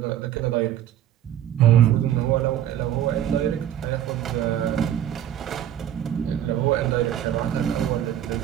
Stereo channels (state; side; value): quieter; left; 11.0 dB